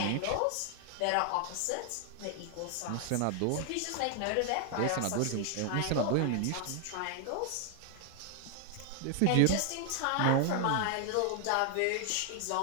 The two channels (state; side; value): different; both; correlation 0.00